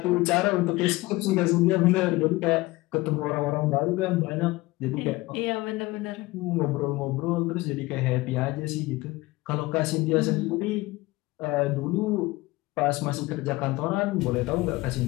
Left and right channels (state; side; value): quieter; right; 20.4 dB